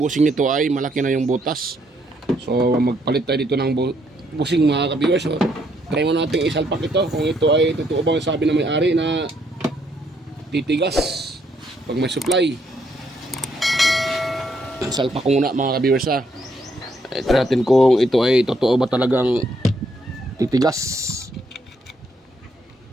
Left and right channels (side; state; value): both; normal; correlation 0.72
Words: nito ay malaki na yung butas. So magpalit tayo dito ng bushing mga ka-viewers. So, try mo nating isalpak ito kung ito ay totoo bang sabi ng may-ari na titigas pag may supply. Salpak ko muna mga ka-viewers ha. Try natin kung ito ay totoo ba talagang titigas.